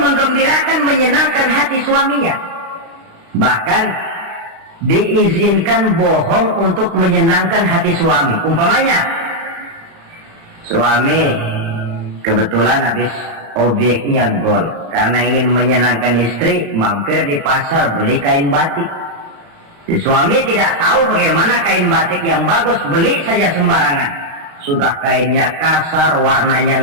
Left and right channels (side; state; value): left; late; 35 ms